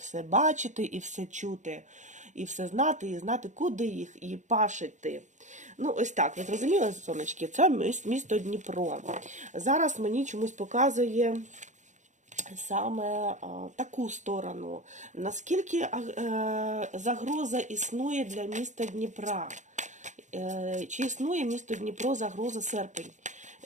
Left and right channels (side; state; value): left; late; 0.35 ms